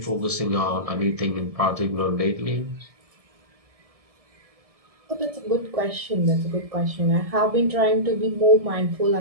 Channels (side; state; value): left; late; 1.7 ms